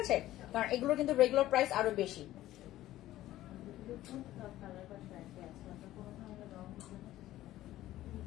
আছে, কারণ এগুলো কিন্তু রেগুলার প্রাইস আরো বেশি।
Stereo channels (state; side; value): quieter; right; 14.7 dB